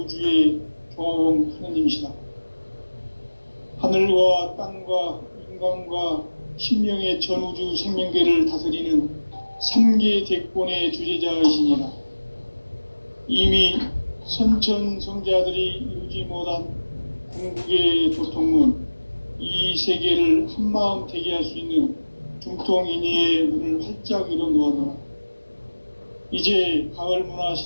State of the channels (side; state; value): both; inverted; correlation -1.00